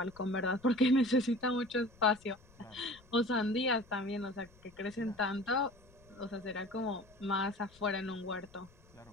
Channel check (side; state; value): left; noise; rumble, 26 dB below the sound